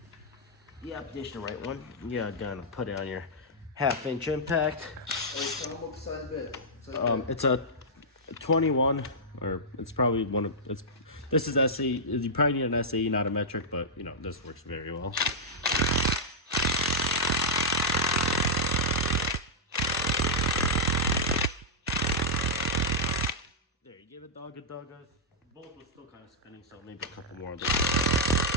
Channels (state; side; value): normal; both; correlation -0.09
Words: Yep, this the right one. Yeah, gonna put it on your 1/2 inch impact. Hey, tell them what size bit. It's a 21, or it's probably one of it's. This is SAE. You probably need an SAE, not a metric, but you know this works very well. There, you give it dog a dog. Bolt was still kind of spinning, so maybe a couple more of those.